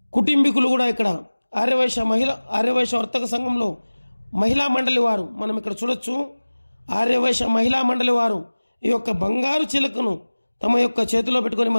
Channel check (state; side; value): inverted; both; correlation -1.00